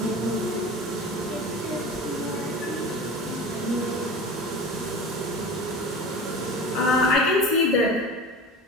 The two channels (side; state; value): both; normal; correlation 0.33